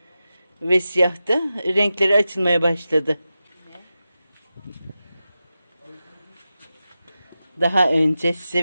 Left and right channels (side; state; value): both; inverted; correlation -0.92